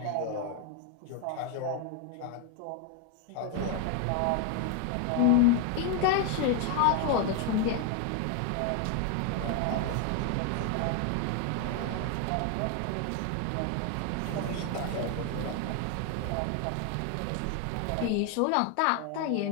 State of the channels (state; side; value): different; both; correlation 0.01